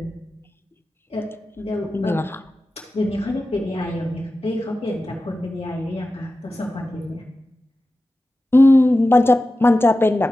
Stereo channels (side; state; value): both; normal; correlation 0.94